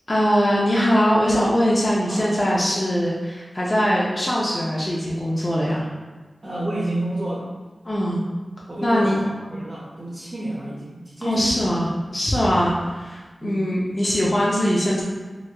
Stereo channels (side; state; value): both; normal; correlation 0.95